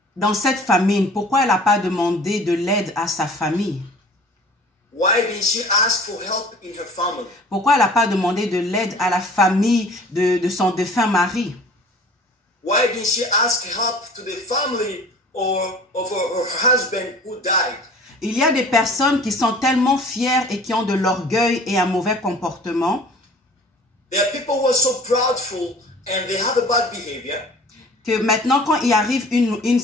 Dans cette famine, pourquoi elle n'a pas demandé de l'aide à sa famille? Why didn't she ask for help in her family? Pourquoi elle n'a pas demandé de l'aide à la famille de son défunt mari? Why didn't she ask help to the family or of her husband who died? Il y a des personnes qui sont tellement fières et qui ont de l'orgueil et un mauvais comportement There are people who are so proudful and they have a bad behavior. que maintenant, quand il arrive une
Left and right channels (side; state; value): both; normal; correlation 0.46